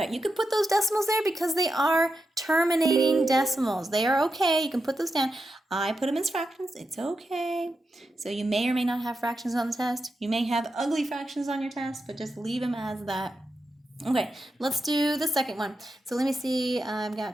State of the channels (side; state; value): both; normal; correlation 0.88